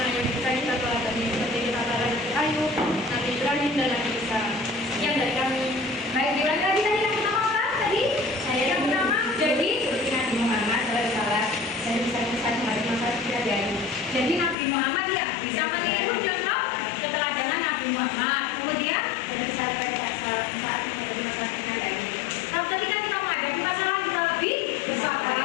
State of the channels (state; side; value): drops out; right; at 14.6 s